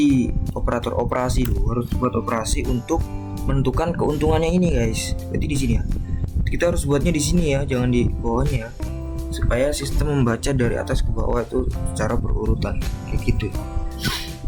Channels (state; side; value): identical; both; correlation 1.00